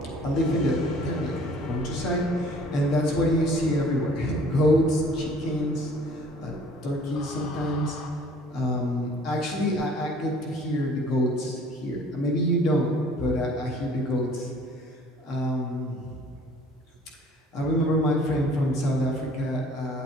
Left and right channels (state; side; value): normal; both; correlation 0.53